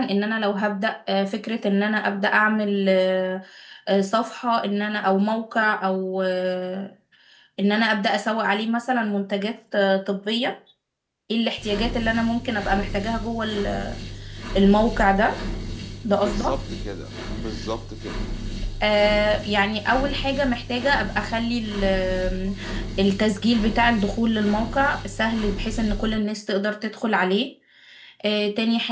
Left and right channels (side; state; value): both; identical; correlation 1.00